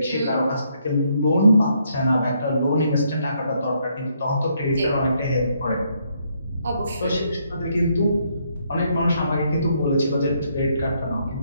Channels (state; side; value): inverted; both; correlation -0.73